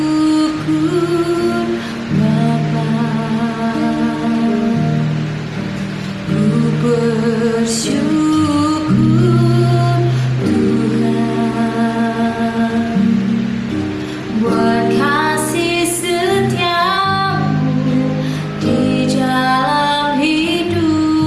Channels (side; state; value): both; identical; correlation 1.00